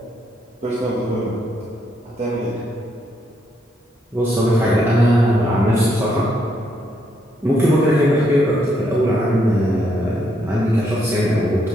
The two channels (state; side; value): normal; both; correlation 0.75